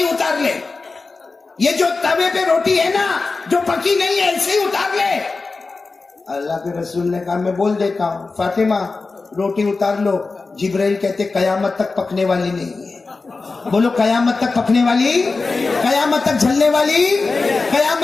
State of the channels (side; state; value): right; quieter; 3.9 dB